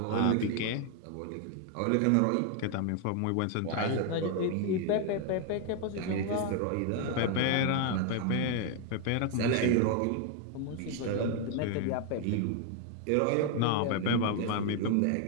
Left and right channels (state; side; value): different; both; correlation 0.00